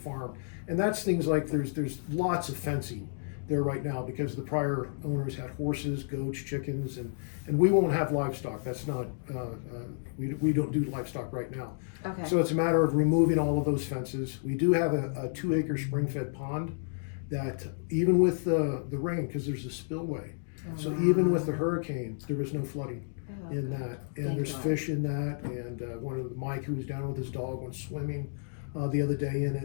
and that's things like there's lots of fencing there right now because the prior owners had horses, goats, chickens, and we won't have livestock. That's not we don't do livestock right now. Okay. So it's a matter of removing all of those fences. We do have a 2-acre spring-fed pond that even with the rain, because there's a spillway, so even with the hurricane, there was no flooding in that, and Thank there's God. fish in that, and Mike, who was down with his dog, went swimming the other day in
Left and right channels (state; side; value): silent; right; digital silence